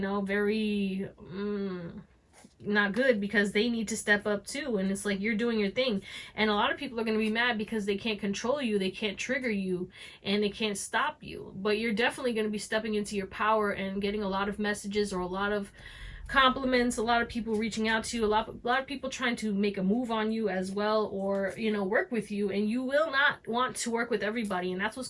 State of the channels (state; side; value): identical; both; correlation 1.00